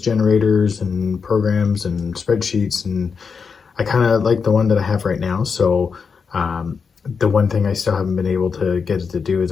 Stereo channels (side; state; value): right; quieter; 5.6 dB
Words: generators and programs and spreadsheets, and I kind of like the one that I have right now. So the one thing I still haven't been able to get it to do is